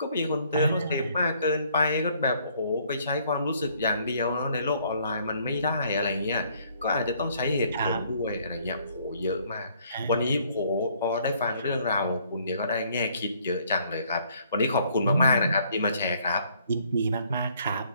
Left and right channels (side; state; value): both; inverted; correlation -0.64